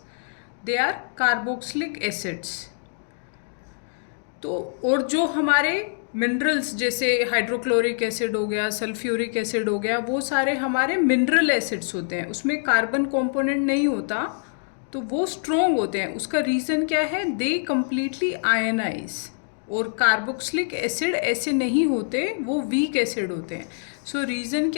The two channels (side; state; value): right; silent; digital silence